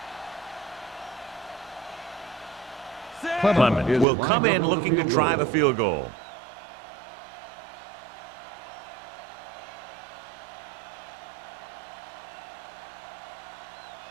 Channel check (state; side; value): drops out; left; at 4.0 s